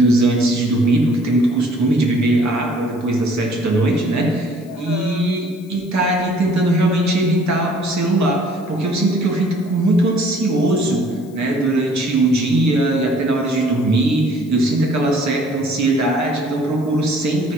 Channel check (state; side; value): noise; left; hiss, 28 dB below the sound